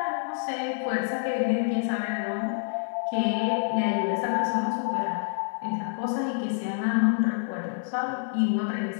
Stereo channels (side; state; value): right; silent; 60 dB below the other